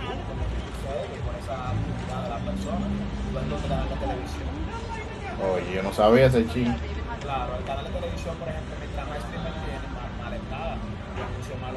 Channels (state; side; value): identical; both; correlation 1.00